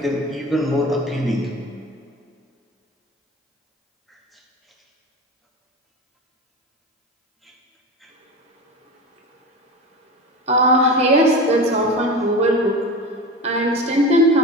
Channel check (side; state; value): both; normal; correlation 0.29